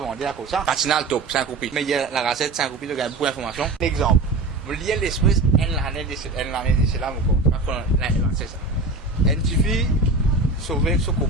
à cause ça. Patinal top, 5 copies. Mais il y a la gazette, 5 copies, de gagner beaucoup d'informations. Exemple, vous liez l'esprit, l'année de cela, c'est ça. Une fille, sauver son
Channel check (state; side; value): quieter; left; 3.4 dB